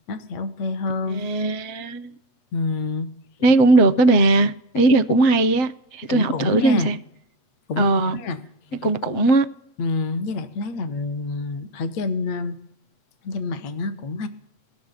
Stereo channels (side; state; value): right; late; 8.2 ms